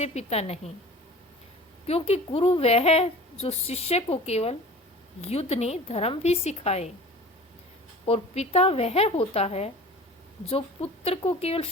पिता नहीं, क्योंकि गुरु वह है जो शिष्य को केवल युद्ध नहीं, धर्म भी सिखाए, और पिता वह होता है जो पुत्र को केवल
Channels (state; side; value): normal; both; correlation 0.40